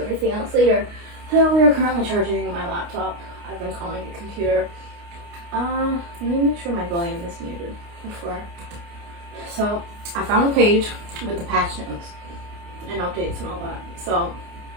else later. So we are currently charging my laptop. I've been calling it computer. Let me make sure my volume is muted before. So I found a page with the patch notes and updates and all that. So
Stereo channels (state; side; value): late; left; 29 ms